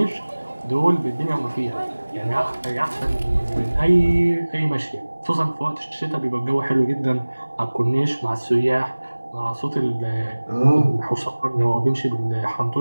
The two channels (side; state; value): both; inverted; correlation -1.00